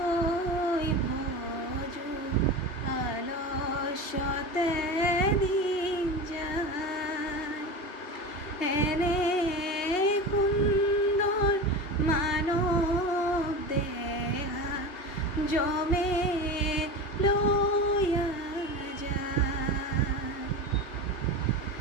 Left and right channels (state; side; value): late; right; 3.2 ms